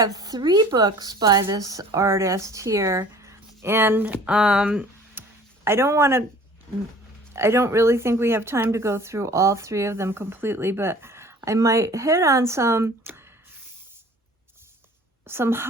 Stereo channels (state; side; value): normal; both; correlation 0.49